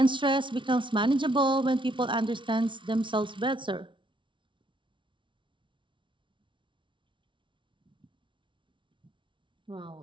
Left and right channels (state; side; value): late; left; 0.24 ms